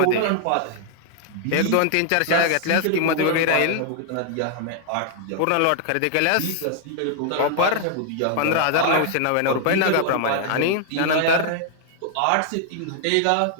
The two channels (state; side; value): different; both; correlation 0.00